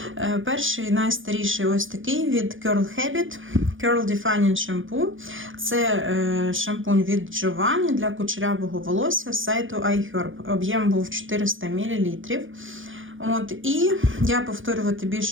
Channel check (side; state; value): left; late; 0.57 ms